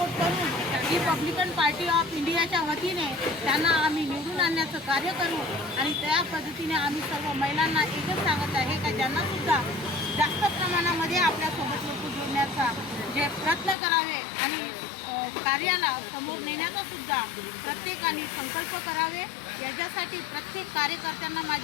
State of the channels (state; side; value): drops out; right; at 13.8 s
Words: करून रिपब्लिकन पार्टी ऑफ इंडियाच्या वतीने त्यांना आम्ही निवडून आणण्याचं कार्य करू। आणि त्या पद्धतीने आम्ही सर्व महिलांना एकच सांगत आहे का ज्यांना सुद्धा जास्त प्रमाणामध्ये आपल्यासोबत लोक जोडण्याचा जे प्रयत्न करावे आणि कार्याला समोर नेण्याचा सुद्धा प्रत्येकाने संकल्प करावे। याच्यासाठी प्रत्येक कार्यकर्त्यांना